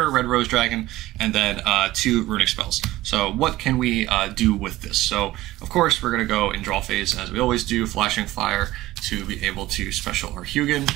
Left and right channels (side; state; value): left; quieter; 16.8 dB